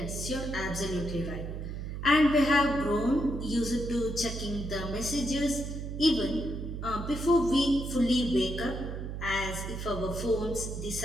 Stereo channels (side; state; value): right; noise; hum, 6 dB below the sound